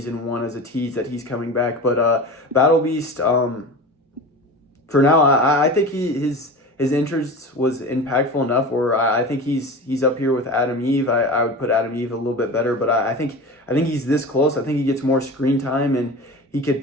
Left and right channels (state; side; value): normal; both; correlation 0.31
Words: 1 as a tease that he's coming back. But Battle Beast, for now, I think his interest was impactful enough where I think he's up here with Adam Eve. I would put Adam Eve a little bit better, but I think he's this close. I think he gets more screen time and he could